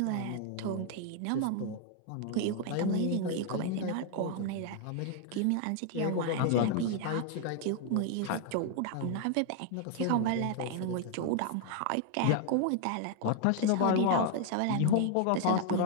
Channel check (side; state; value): both; different; correlation 0.00